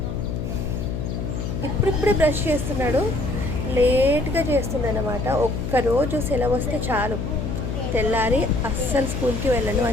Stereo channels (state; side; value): noise; left; hum, 3 dB below the sound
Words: ఇప్పుడిప్పుడే బ్రష్ చేస్తున్నాడు, లేట్గా చేస్తుందన్నమాట. ఒక్కరోజు సెలవు వస్తే చాలు, తెల్లారి అస్సలు స్కూల్కి వెళ్ళను